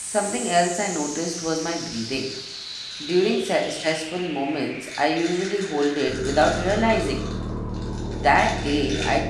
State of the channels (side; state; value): both; identical; correlation 1.00